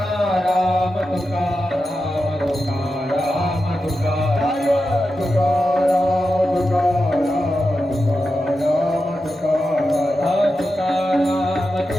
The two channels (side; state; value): both; normal; correlation 0.90